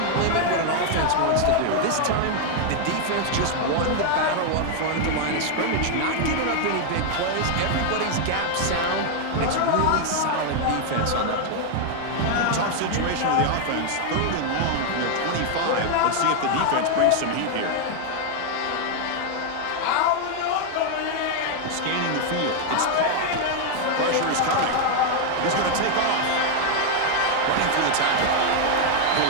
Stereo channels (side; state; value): both; different; correlation 0.00